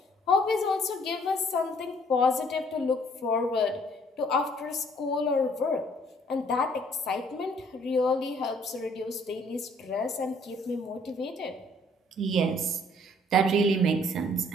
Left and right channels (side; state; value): both; normal; correlation 0.61